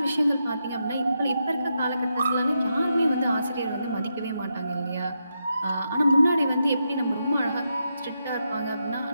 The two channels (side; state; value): both; inverted; correlation -0.84